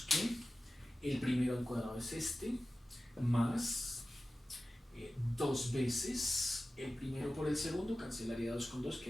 que el primero al cuadrado es este, más 2 veces el primero por el segundo, cancelaría 2 con 2,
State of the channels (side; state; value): both; normal; correlation 0.95